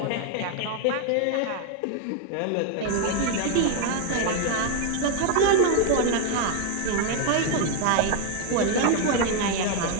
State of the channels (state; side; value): different; both; correlation 0.00